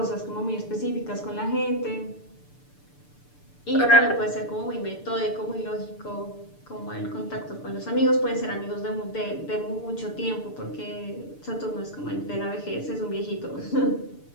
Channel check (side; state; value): right; late; 6.8 ms